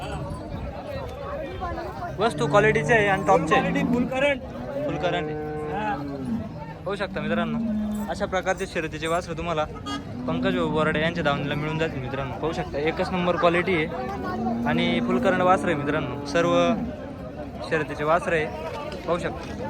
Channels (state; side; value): identical; both; correlation 1.00